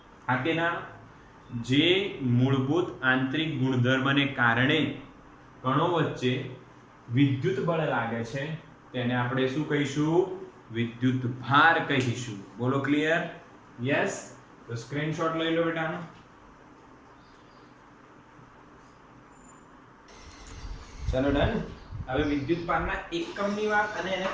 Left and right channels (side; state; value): both; identical; correlation 1.00